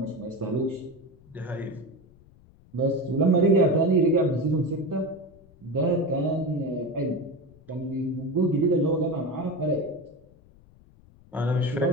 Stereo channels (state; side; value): noise; left; rumble, 26 dB below the sound